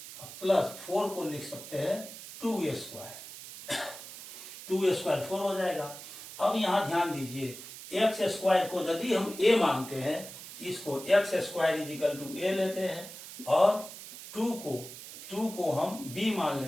प्लस 4 को लिख सकते हैं 2a स्क्वायर। 2a स्क्वायर 4 हो जाएगा। अब यहाँ ध्यान दीजिए x स्क्वायर को यदि हम a मानते हैं इसको x square is equal to a लेते हैं और 2 को हम b मान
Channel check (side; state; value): right; noise; hiss, 13 dB below the sound